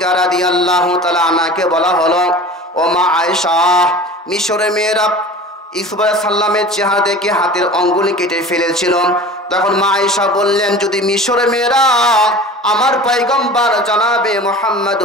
রাদিয়াল্লাহু তাআলা আনহাকে বলা হলো, ও মা আয়েশা, মিশরের মেয়েরা ইউসুফ আলাইহিস সালামের চেহারা দেখে হাতের আঙ্গুল কেটে ফেলেছিল। তখন মা আয়েশা বললেন, যদি মিশরের মেয়েরা আমার পয়গম্বর জনাবে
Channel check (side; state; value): both; normal; correlation 0.39